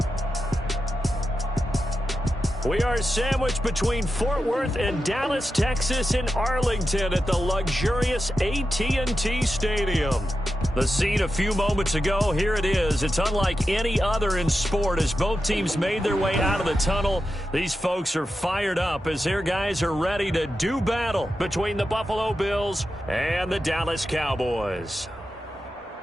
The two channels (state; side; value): normal; both; correlation 0.90